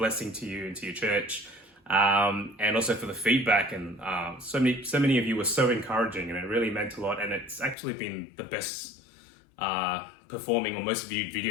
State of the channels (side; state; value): right; drops out; at 7.8 s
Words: to you and to your church. And also for the feedback, and so many of you were so encouraging, and it really meant a lot. And it's actually been the best performing or most viewed